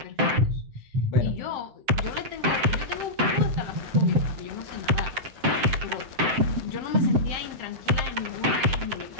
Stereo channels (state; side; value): late; left; 7.7 ms